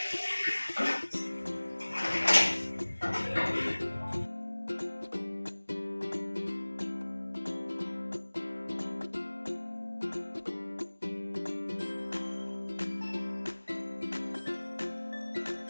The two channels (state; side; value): inverted; both; correlation -1.00